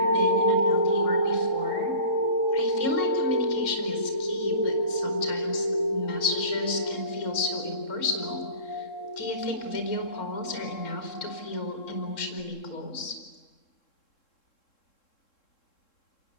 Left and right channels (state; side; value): late; right; 3.7 ms